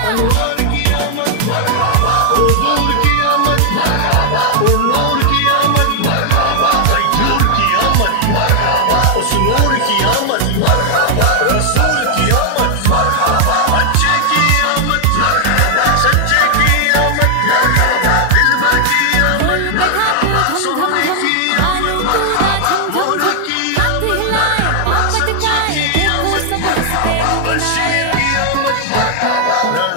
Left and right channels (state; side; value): different; both; correlation 0.00